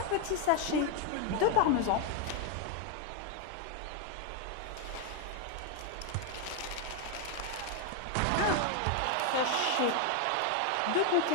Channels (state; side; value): different; both; correlation 0.01